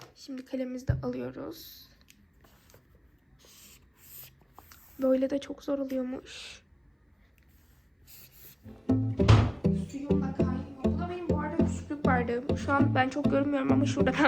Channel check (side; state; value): both; identical; correlation 1.00